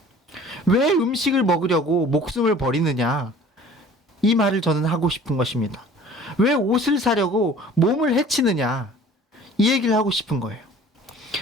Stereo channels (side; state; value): both; normal; correlation 0.48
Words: 왜 음식을 먹으려고 목숨을 버리느냐? 이 말을 저는 하고 싶은 것입니다. 왜 옷을 사려고 몸을 해치느냐? 이 얘기를 하고 싶은 거예요.